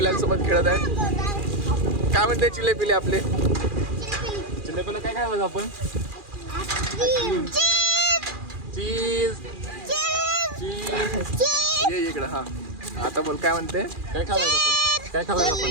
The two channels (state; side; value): late; left; 2.4 ms